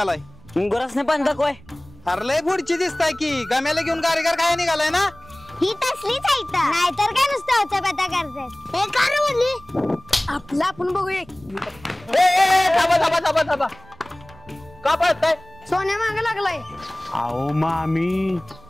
गुरासने पण दाखवाय. अरे लय पुढची दिसताय की. गम्याला घेऊन गारीगार काय निघालाय ना? ही तसलीच आहे नाहीतर काय नुसतं उचापता करतात. हे का म्हणली आपला आपण बघूया. थांबा का पळताय? सोन्या मागे लागलाय. अहो मामी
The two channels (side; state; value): right; noise; rumble, 24 dB below the sound